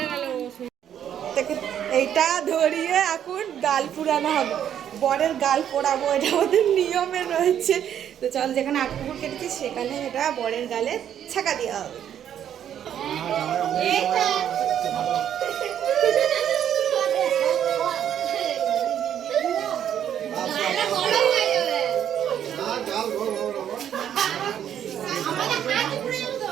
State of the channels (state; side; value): quieter; left; 9.7 dB